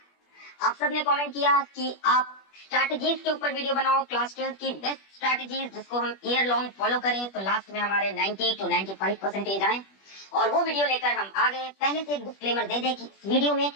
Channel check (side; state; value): right; late; 21 ms